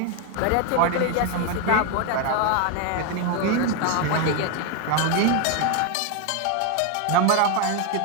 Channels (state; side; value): different; both; correlation 0.01